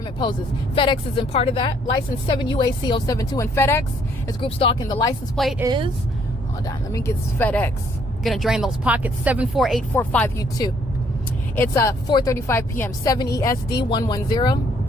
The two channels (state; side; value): normal; both; correlation 0.66